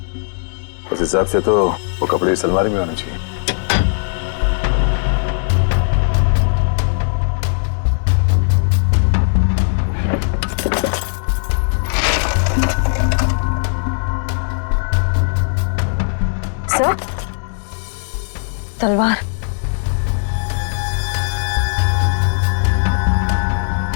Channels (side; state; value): right; silent; digital silence